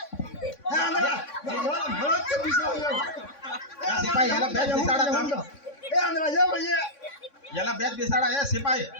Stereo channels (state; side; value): late; right; 3.6 ms